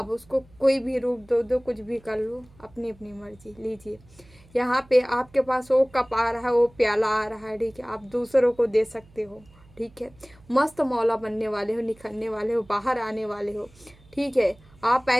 उसको कोई भी रूप दो, कुछ भी कर लो, अपनी अपनी मर्जी लीजिए। यहाँ पे आपके पास वो कप आ रहा है, वो प्याला आ रहा है। ठीक है। आप दूसरों को दे सकते हो। ठीक है। मस्त मौला बनने वाले हो, निखरने वाले हो, बाहर आने वाले हो। ठीक है। आप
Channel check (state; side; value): noise; right; hum, 26 dB below the sound